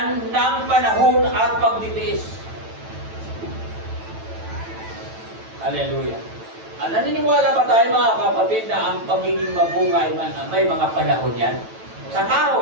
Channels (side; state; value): left; late; 9.1 ms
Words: ng panahon at pagtitiis. Hallelujah. Naniniwala ba tayo mga kapatid na ang pagiging mabunga ay may mga panahon yan? Sa